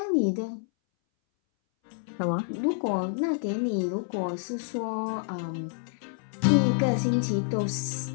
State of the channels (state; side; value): silent; right; 59 dB below the other